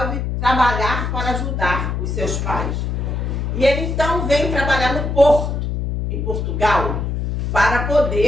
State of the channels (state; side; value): noise; left; hum, 2 dB below the sound